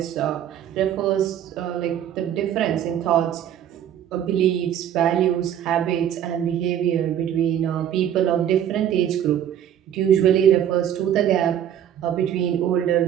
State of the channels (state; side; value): quieter; left; 10.2 dB